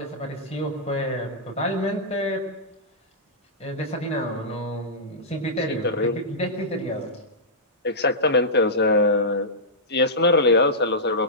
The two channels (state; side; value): normal; both; correlation -0.14